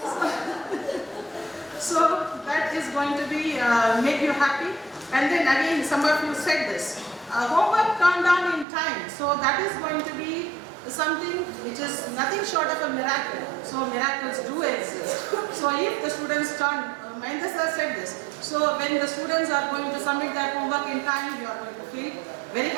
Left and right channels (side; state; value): left; drops out; at 8.7 s